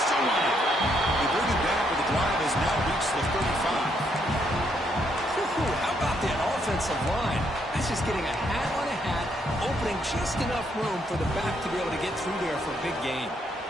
still on it. They bring it back, but the drive has now reached the 35. How about that offensive line? That's just getting a hat on a hat, opening just enough room for the back to be able to get through there for a big gain.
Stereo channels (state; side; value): normal; both; correlation 0.74